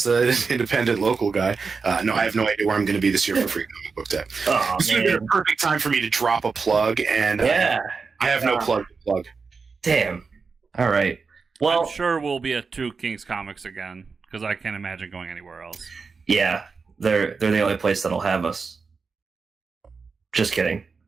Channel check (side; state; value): left; quieter; 4.9 dB